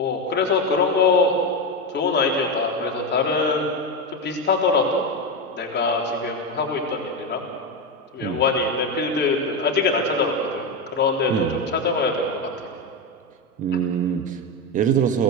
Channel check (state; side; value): normal; both; correlation 0.13